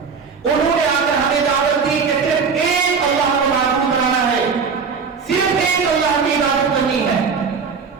انہوں نے آ کر ہمیں دعوت دی کہ صرف ایک اللہ کو معبود بنانا ہے, صرف ایک اللہ کی عبادت کرنی ہے,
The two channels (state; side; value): quieter; left; 5.5 dB